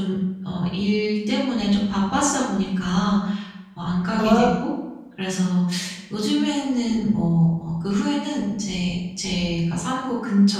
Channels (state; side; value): identical; both; correlation 1.00